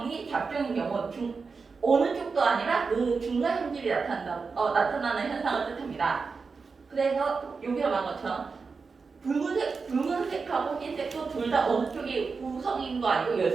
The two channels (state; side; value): quieter; left; 4.8 dB